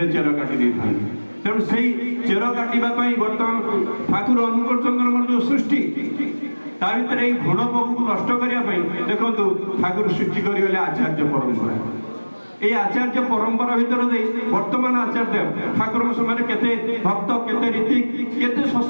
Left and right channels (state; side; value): inverted; both; correlation -1.00